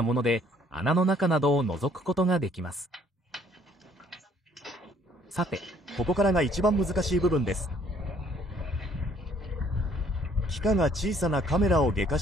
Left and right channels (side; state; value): both; normal; correlation 0.62